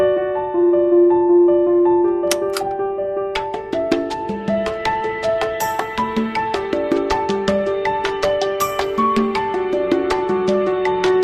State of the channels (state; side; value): identical; both; correlation 1.00